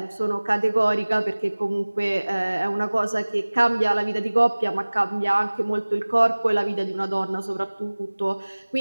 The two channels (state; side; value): inverted; both; correlation -1.00